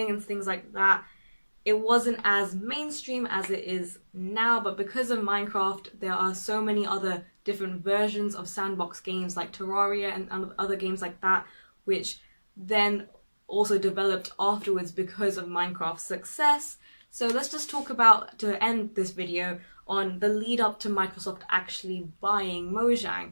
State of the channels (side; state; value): both; inverted; correlation -1.00